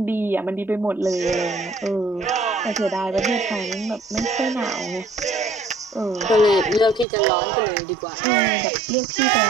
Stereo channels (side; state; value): left; drops out; at 7.1 s